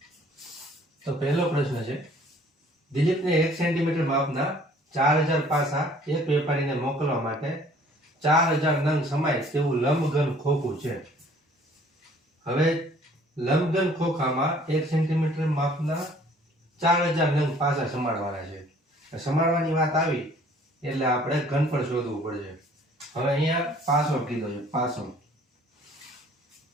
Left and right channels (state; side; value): normal; both; correlation 0.55